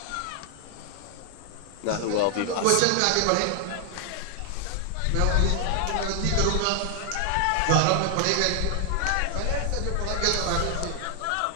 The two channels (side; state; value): both; different; correlation 0.00